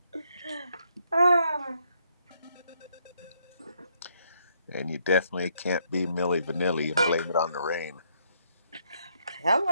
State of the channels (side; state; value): both; inverted; correlation -0.73